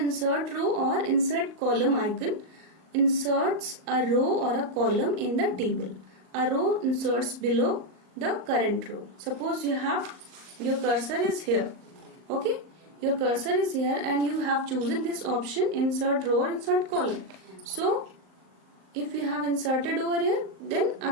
row or insert column icon inserts a row or a column in the table. A row inserts below the current row. Suppose you have your cursor is here. Okay, your cursor is here and you have chosen this option, insert row or insert column. So if you have inserted over here,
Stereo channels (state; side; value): late; left; 38 ms